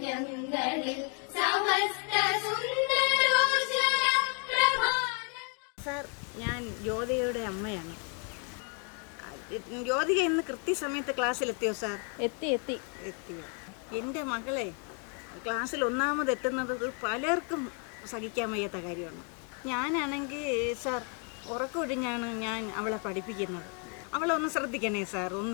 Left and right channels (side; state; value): right; quieter; 38.1 dB